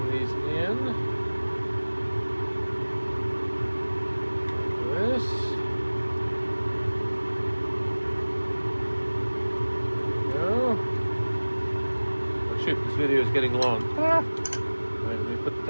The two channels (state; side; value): inverted; both; correlation -1.00